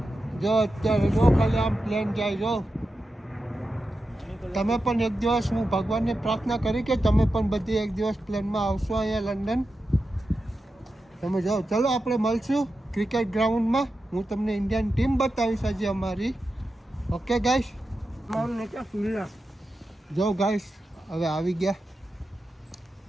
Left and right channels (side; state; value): both; normal; correlation 0.90